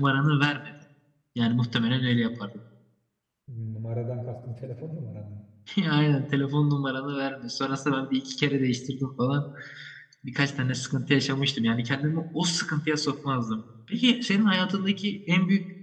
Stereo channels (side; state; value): both; identical; correlation 1.00